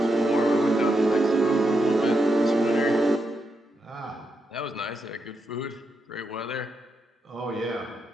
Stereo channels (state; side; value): normal; both; correlation 0.83